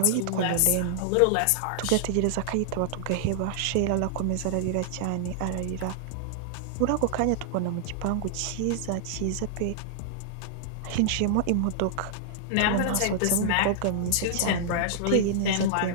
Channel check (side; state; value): both; different; correlation -0.01